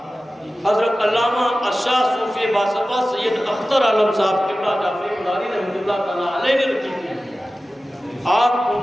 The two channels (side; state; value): both; normal; correlation 0.95